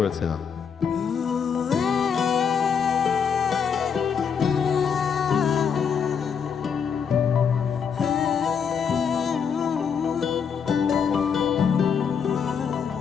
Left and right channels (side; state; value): right; quieter; 6.9 dB